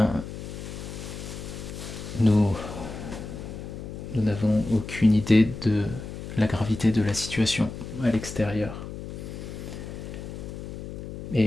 nous n'avons aucune idée de la gravité de la situation à l'extérieur.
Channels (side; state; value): left; noise; hum, 9 dB below the sound